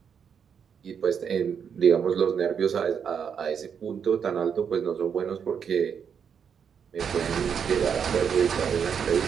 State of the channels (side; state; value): left; quieter; 7.3 dB